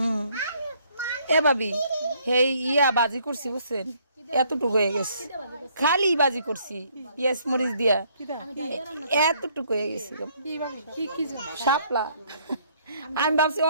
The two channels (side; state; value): both; inverted; correlation -0.65